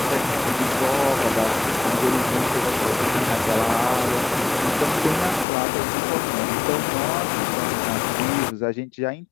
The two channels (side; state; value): right; drops out; at 5.5 s